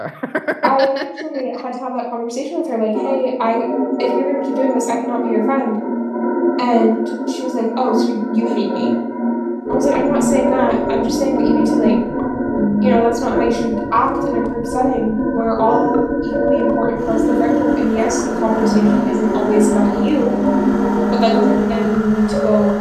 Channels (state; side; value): identical; both; correlation 1.00